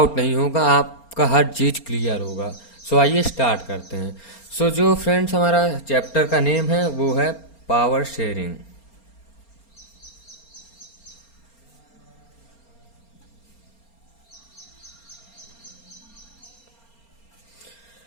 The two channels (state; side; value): late; right; 4.3 ms